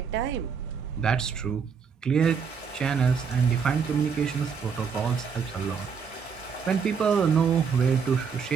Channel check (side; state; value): left; quieter; 6.2 dB